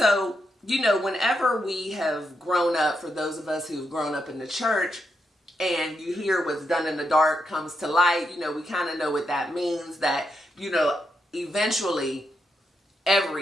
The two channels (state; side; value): normal; both; correlation 0.83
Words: you know, whenever we have grown up, for those of us who've grown up in the church, and you hear what's done in the dark comes to light, you know, we kind of know what that means, that, you know, eventually